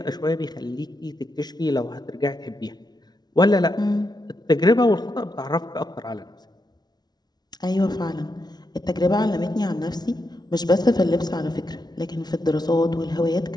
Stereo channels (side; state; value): right; late; 0.19 ms